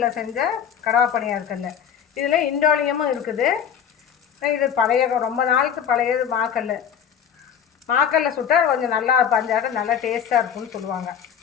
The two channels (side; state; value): right; quieter; 8.3 dB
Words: செஞ்ச கடவா பணியாரக்கல்ல. இதில் இண்டோலியமும் இருக்குது. இது ரொம்ப நாளுக்கு பழையது மாக்கல்ல சுட்டால் கொஞ்சம் நல்லா பஞ்சாட்டம் நல்லா டேஸ்ட்டாக இருக்குன்னு சொல்லுவாங்க.